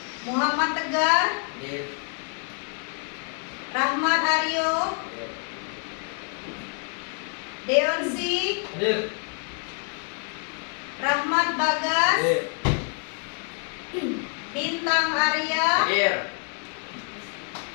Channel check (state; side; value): quieter; right; 39.8 dB